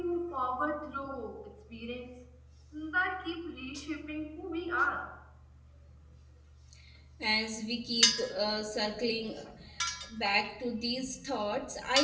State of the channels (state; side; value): identical; both; correlation 1.00